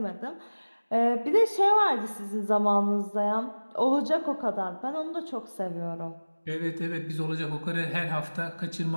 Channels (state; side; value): inverted; both; correlation -1.00